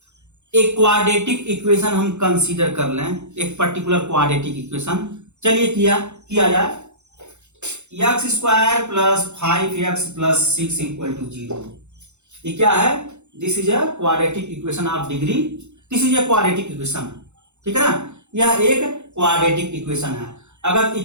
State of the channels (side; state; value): left; late; 0.83 ms